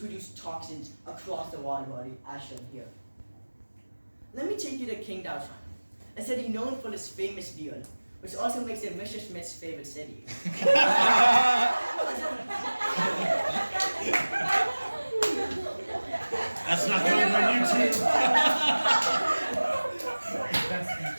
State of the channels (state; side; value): inverted; both; correlation -1.00